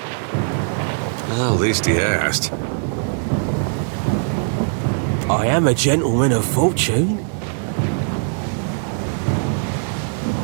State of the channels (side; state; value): left; silent; 55 dB below the other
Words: Well, at least he asked. I am a gentleman of fortune.